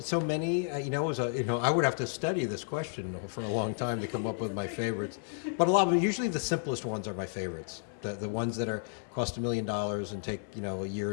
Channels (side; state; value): right; silent; 56 dB below the other